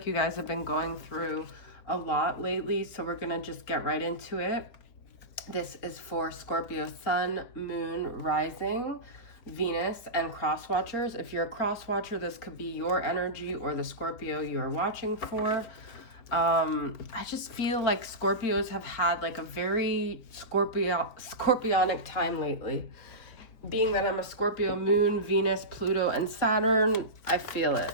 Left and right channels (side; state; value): right; late; 4.3 ms